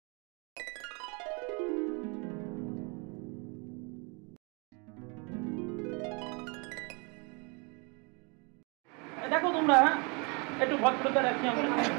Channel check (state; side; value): quieter; left; 31.9 dB